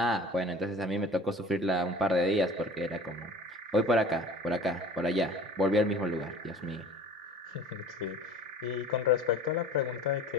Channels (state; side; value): normal; both; correlation 0.43